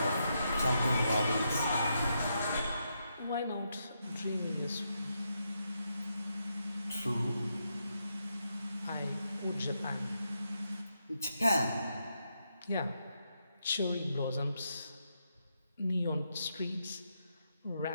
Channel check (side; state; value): both; inverted; correlation -0.82